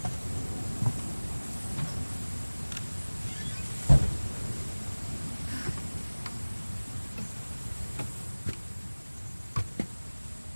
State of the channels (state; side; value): inverted; both; correlation -1.00